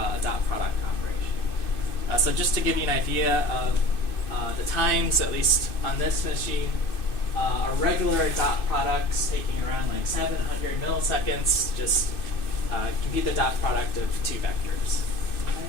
dot product operation. So just to give you an idea of the times, at least on this machine, a regular dot product's taking around 700 milliseconds. Just compute the dot product of 2 vectors.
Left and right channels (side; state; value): right; late; 2.6 ms